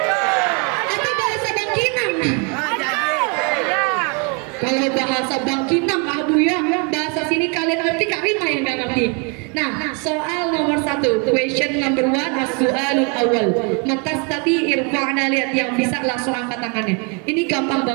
Atau bahasa Bangkinang? Kalau bahasa Bangkinang, Abu ya, bahasa sini kalian ngerti, Karima yang nggak ngerti. Nah, soal nomor 1, question number 1, as-su'alul awal. Matastati irfa'na, lihat, yang bisa langsung angkat tangannya. Ini gampang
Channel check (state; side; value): quieter; left; 34.6 dB